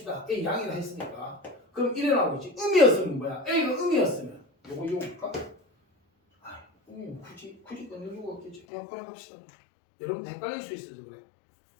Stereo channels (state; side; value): drops out; right; at 8.6 s